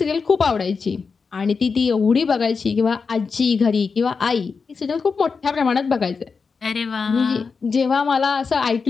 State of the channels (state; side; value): quieter; right; 5.1 dB